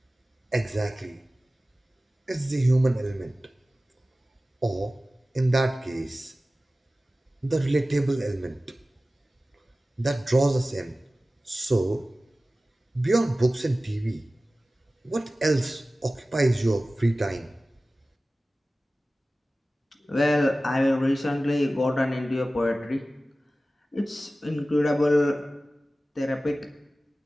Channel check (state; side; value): normal; both; correlation 0.96